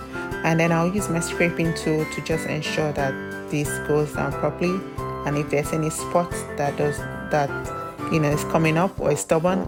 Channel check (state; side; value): identical; both; correlation 1.00